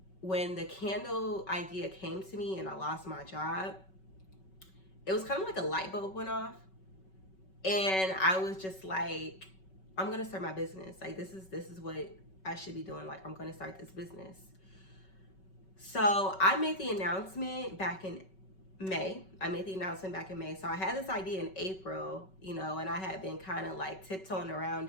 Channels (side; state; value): right; late; 5.3 ms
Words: when the candle idea came to me and I lost my job, it was kind of like a light bulb went off, and I was just like, I'm gonna start my business. Like this is what I should be doing. Like I'm gonna start this business. So I made the announcement back in May. So I had this idea in April, and I had been kind of like tiptoeing